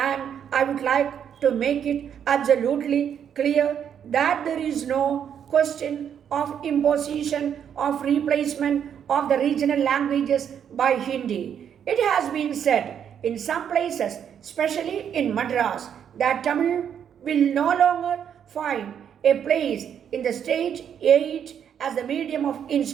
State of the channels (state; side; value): quieter; left; 8.5 dB